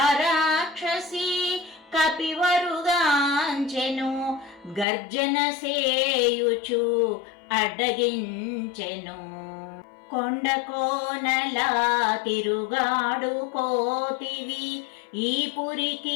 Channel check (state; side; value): drops out; right; at 4.9 s